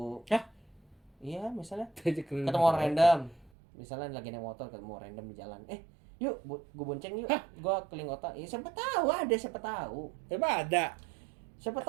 Hah? Iya, misalnya Ketemu ketemu orang random. Misalnya lagi naik motor ketemu orang random di jalan. Yuk, gue bonceng yuk. Gue keliling kota. Ya siapa tahu ada, siapa tahu. Emang ada? Siapa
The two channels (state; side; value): drops out; left; at 3.5 s